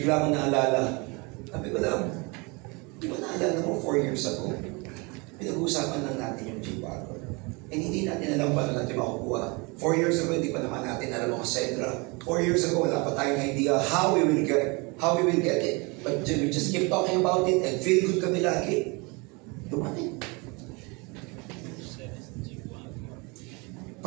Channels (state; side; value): quieter; left; 28.6 dB